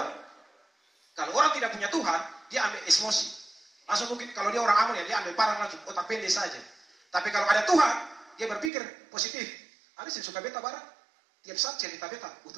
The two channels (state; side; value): drops out; left; at 8.7 s